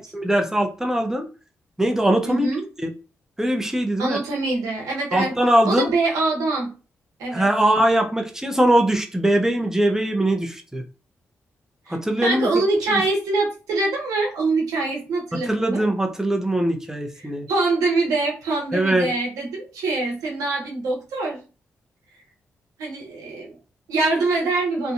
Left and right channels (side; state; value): both; normal; correlation 0.82